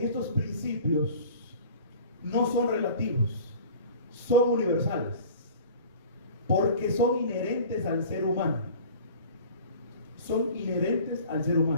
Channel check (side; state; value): both; inverted; correlation -0.43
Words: y estos principios no son relativos, son universales, porque son inherentes al ser humano. Son inherentes al ser